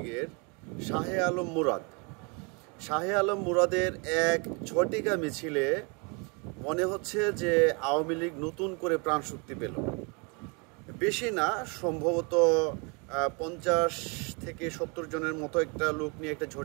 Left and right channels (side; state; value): left; quieter; 32.8 dB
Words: শাহে আলম মুরাদের এক ঝটিকা মিছিলে মনে হচ্ছে যে আওয়ামী লীগ নতুন করে প্রাণশক্তি পেল। বেশি না, সম্ভবত 50 থেকে 70 জনের মতো একটা লোক নিয়ে একটা